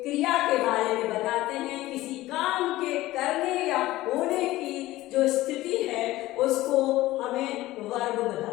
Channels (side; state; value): right; quieter; 17.0 dB